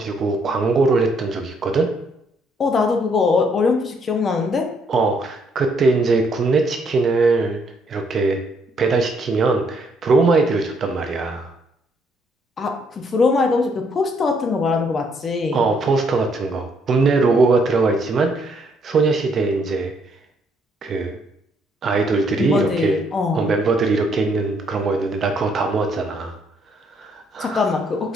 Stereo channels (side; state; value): both; normal; correlation 0.70